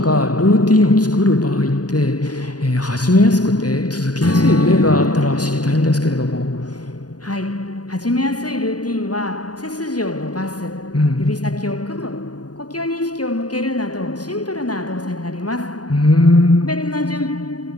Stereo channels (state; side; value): late; right; 0.69 ms